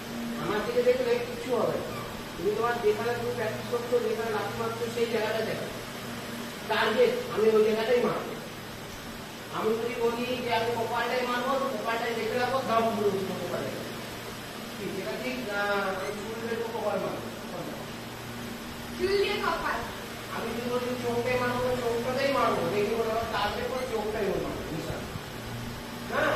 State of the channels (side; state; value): both; identical; correlation 1.00